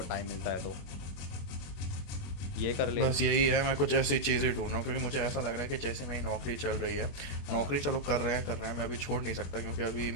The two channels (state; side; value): late; right; 21 ms